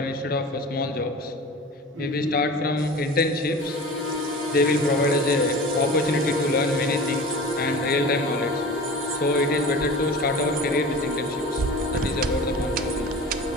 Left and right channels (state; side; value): normal; both; correlation 0.36